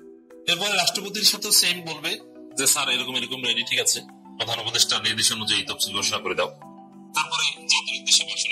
এরপরে রাষ্ট্রপতির সাথেও সেম বলবে যে স্যার এরকম এরকম রেডি, ঠিক আছে, প্রধান উপদেষ্টা নির্দেশ অনুযায়ী তফসিল ঘোষণা করে দাও। তারপরে জাতির উদ্দেশ্যে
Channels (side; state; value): both; identical; correlation 1.00